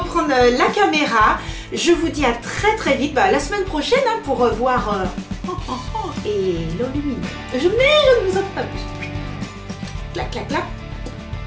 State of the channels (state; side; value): identical; both; correlation 1.00